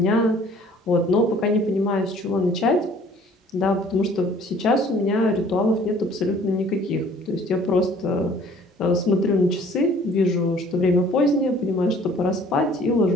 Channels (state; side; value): normal; both; correlation 0.54